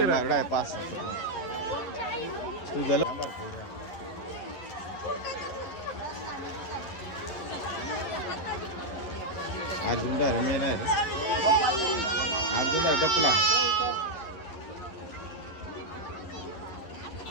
मारड आहे 5 तू झालं. अर्जुन डायरे मेन आहे रे. अर्जुन आहे गपला.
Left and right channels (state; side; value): late; right; 11 ms